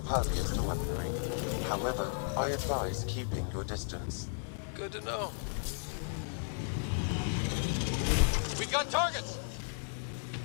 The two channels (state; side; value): silent; right; 55 dB below the other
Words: to weaponry. However, I advise keeping your distance. Good to know. We've got targets!